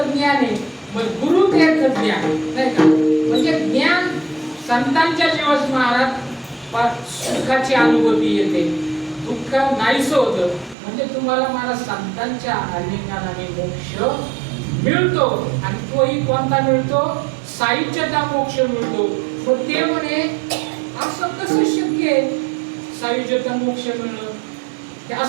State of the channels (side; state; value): left; drops out; at 10.8 s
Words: ज्ञान आहे. मग गुरु ते ज्ञान, नाही का? म्हणजे ज्ञान संतांच्या जीवास महाराज सुखाची अनुभूती येते, दुःख नाहीसं होतं. म्हणजे तुम्हाला मला संतांच्या आलिंगनाने मोक्ष मिळतो. आणि तोही कोणता मिळतो? सायुज्यता मोक्ष मिळतो. मग ते म्हणे असं कसं शक्य आहे सायुज्यता मोक्ष मिळणं? ते